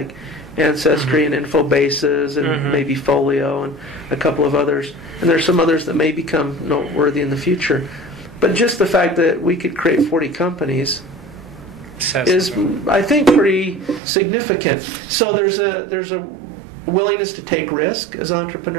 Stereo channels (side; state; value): left; drops out; at 14.0 s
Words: Ancestry and Infobases and maybe Folio and a couple of others. And there's some others that may become noteworthy in the future. But just the fact that we could create 40 companies is, I think, pretty significant. So there's a willingness to take risk as